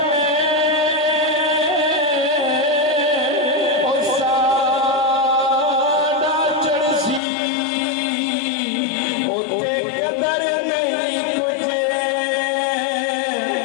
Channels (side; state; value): right; drops out; at 7.2 s